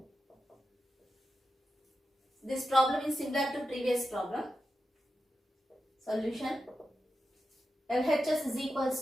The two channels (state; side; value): normal; both; correlation 0.89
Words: This problem is similar to previous problem. Solution. LHS is